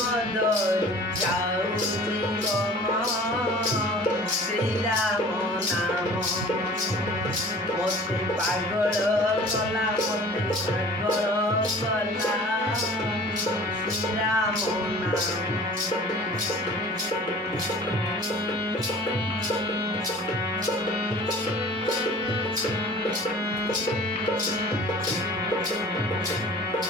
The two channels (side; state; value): both; normal; correlation 0.45